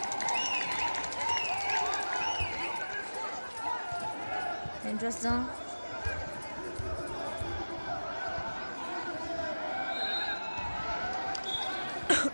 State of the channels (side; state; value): both; inverted; correlation -1.00